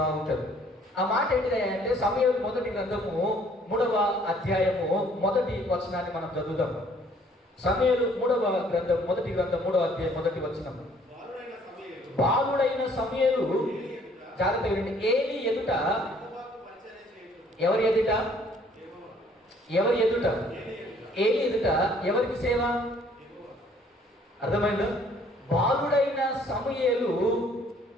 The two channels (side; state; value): both; normal; correlation 0.60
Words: ఉంటుంది. ఆ మాట ఏంటిదంటే సమూయేలు 1వ గ్రంథము 3వ అధ్యాయము 1వ వచనాన్ని మనం చదువుదాం. సమూయేలు 3వ గ్రంథం 1వ గ్రంథం 3వ అధ్యాయం 1వ వచనం. బాలుడైన సమూయేలు, జాగ్రత్త వినండి, ఏలీ ఎదుట, ఎవరి ఎదుట? ఏలి ఎదుట ఎవరికి సేవ? అర్థమైందా? బాలుడైన సమూయేలు